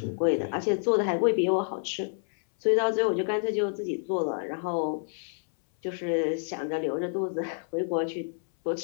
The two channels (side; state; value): right; silent; 59 dB below the other